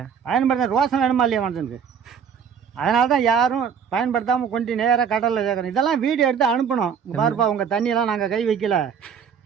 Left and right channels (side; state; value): left; quieter; 7.2 dB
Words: பயன்படுத்த ரோசம் வேணுமா இல்லையா மனுஷனுக்கு? அதனால தான் யாரும் பயன்படுத்தாமல் கொண்டு நேராக கடலில் சேர்க்கணும். இதெல்லாம் வீடியோ எடுத்து அனுப்பணும். இங்கே பாருப்பா, உங்கள் தண்ணியெல்லாம் நாங்கள் கை வைக்கல,